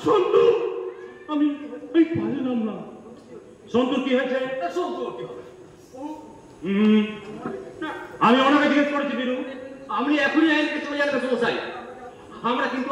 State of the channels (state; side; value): identical; both; correlation 1.00